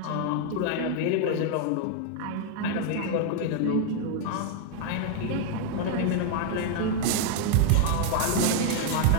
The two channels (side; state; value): both; different; correlation 0.00